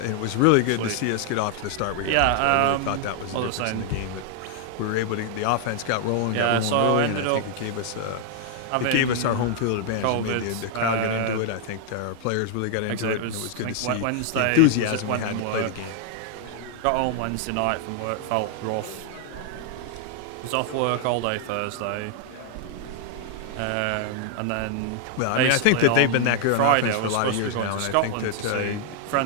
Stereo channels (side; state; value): both; different; correlation 0.00